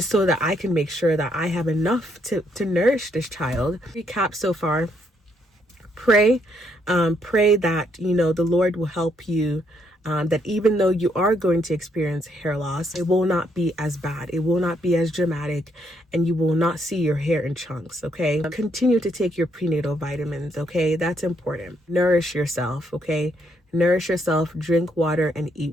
so that I can make sure that I have enough to nourish this child. Recap so far. Pray that, the Lord will help you. That even though you are going to experience hair loss, it will not be as bad. It will not be as dramatic and you will not see your hair in chunks, okay? Continue to take your prenatal vitamins, okay? That's important. Nourish yourself, okay? Nourish yourself, drink water, and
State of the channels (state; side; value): normal; both; correlation 0.73